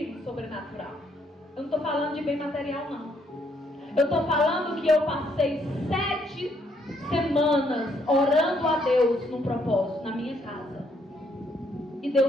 no sobrenatural. Eu não estou falando de bem material, não. Eu estou falando que eu passei 7 semanas orando a Deus num propósito, na minha casa. E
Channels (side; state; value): both; normal; correlation 0.71